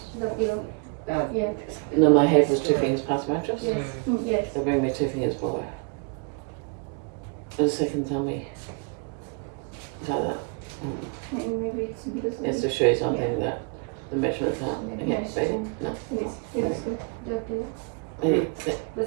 The below. Yeah. No, my head was 2 fingers past the mattress? Yes. Yes. So bring me 2 fingers below. For the second tell me. Like that. Maybe it's because It's to show you something that the measurements are Maybe against I baby. should- No. Yes. Good. The below. Maybe sit.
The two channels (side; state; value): left; quieter; 35.2 dB